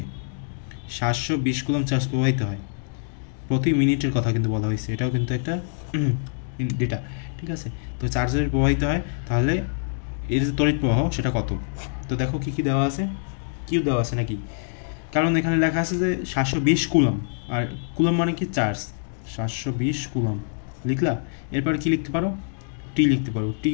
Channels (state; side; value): silent; right; digital silence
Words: 720 কুলম চার্জ প্রবাহিত হয়, প্রতি মিনিটের কথা কিন্তু বলা হয়েছে, এটাও কিন্তু একটা ডেটা, ঠিক আছে? তো চার্জ যদি প্রবাহিত হয় তাহলে এর যে তড়িৎ প্রবাহ সেটা কত? তো দেখো কী কী দেওয়া আছে, কিউ দেওয়া আছে নাকি? কারণ এখানে লেখা আছে যে 720 কুলম, আর কুলম মানে কি? চার্জ। 720 কুলম লিখলা, এরপর কি লিখতে পারো? টি লিখতে পারো। টি